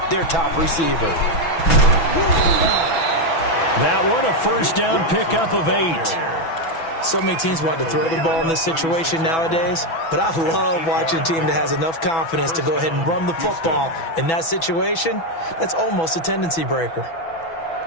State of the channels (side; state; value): right; late; 6.1 ms